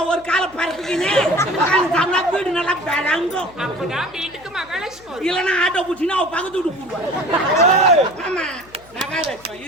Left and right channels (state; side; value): noise; left; hum, 25 dB below the sound